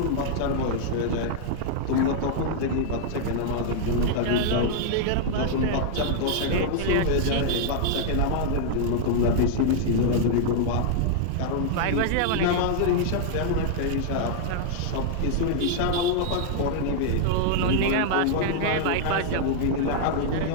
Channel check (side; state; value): both; different; correlation -0.01